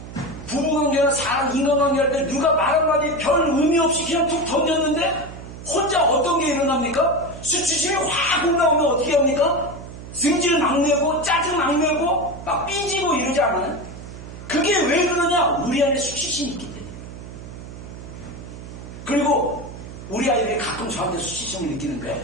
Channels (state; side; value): noise; right; hum, 13 dB below the sound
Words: 부부관계나 사람 인간관계 할 때 누가 말 한마디 별 의미 없이 그냥 툭 던졌는데 혼자 어떤 게 일어납니까? 수치심이 확 올라오면 어떻게 합니까? 승질 막 내고 짜증 막 내고 막 삐지고 이러지 않아요? 그게 왜 그러냐? 우리 안에 수치심이 있기 때문에. 그리고 우리 아이들이 가끔 저한테 수치심을